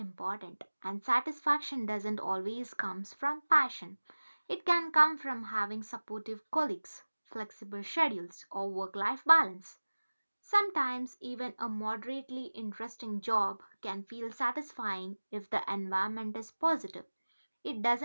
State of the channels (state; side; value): inverted; both; correlation -1.00